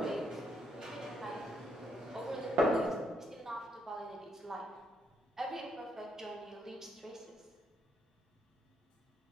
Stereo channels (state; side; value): normal; both; correlation 0.75